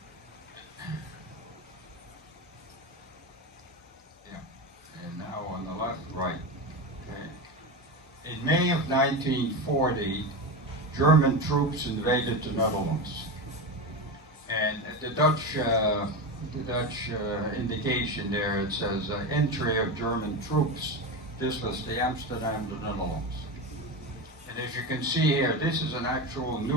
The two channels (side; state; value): both; normal; correlation 0.19